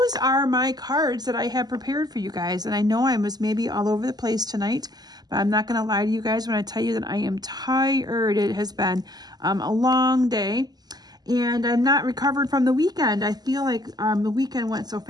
are my cards that I have prepared for you guys. And I know I was maybe all over the place tonight, but I'm not going to lie to you guys when I tell you that I am tired. It has been a long day and I'm not recovered from the weekend. I feel like the weekend went so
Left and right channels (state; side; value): late; left; 0.20 ms